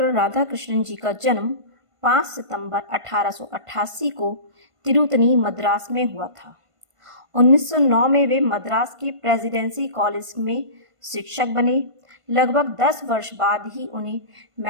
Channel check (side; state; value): left; late; 1.5 ms